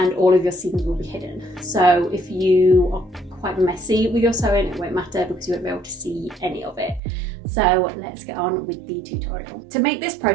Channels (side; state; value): left; drops out; at 7.0 s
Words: all of your seams will be hidden. So if you are quite messy with your sewing, it won't matter because you won't be able to see any of it. So let's get on with the tutorial. To make this